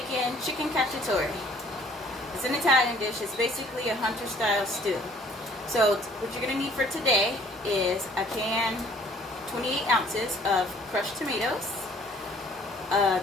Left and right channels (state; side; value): normal; both; correlation 0.57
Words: chicken cacciatore. It's an Italian dish. It's basically a hunter style stew. So what you're going to need for today is a can, 28 ounces of crushed tomatoes, a